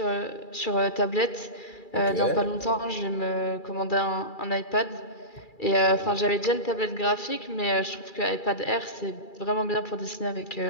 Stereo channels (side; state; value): right; late; 2.3 ms